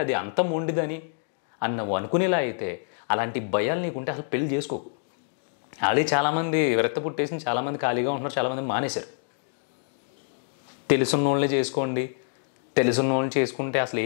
అది అంత మొండిదని అని నువ్వు అనుకునేలా అయితే అలాంటి భయాలు నీకుంటే అసలు పెళ్ళి చేసుకోకు. ఆల్రెడీ చాలామంది విరక్త పుట్టేసి చాలామంది ఖాళీగా ఉంటున్నారు, చాలామంది మానేశారు. తెలుసున్న వాళ్ళని చేసుకోండి, తెలుసున్న వాళ్ళని చేసుకుంటే అసలు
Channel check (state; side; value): silent; right; digital silence